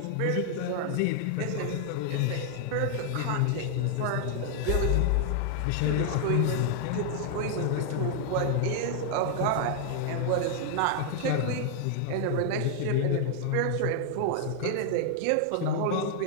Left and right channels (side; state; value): both; different; correlation 0.00